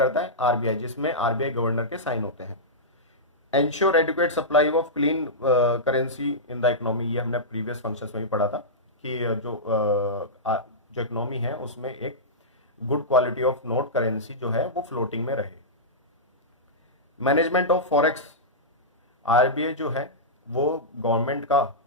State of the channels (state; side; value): normal; both; correlation -0.13